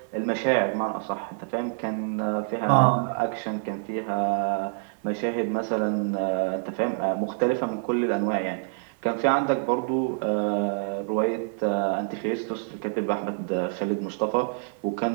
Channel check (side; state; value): left; silent; 60 dB below the other